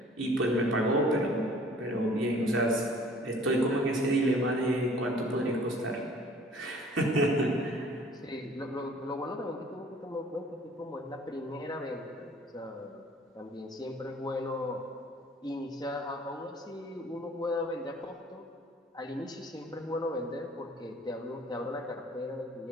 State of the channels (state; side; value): normal; both; correlation 0.53